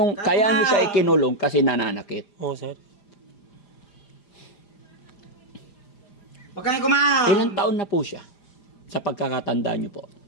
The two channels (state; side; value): late; right; 5.0 ms